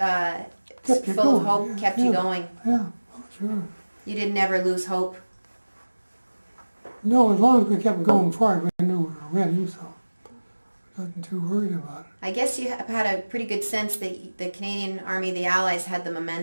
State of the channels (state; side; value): inverted; both; correlation -1.00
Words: of hope, kept you going. Yeah, oh, sure. You didn't ever lose hope. No, as long as we kept going forward, we knew we were winning, so I wasn't too worried about it. I guess you have had a pretty good sense that the Canadian Army, the Allies, had the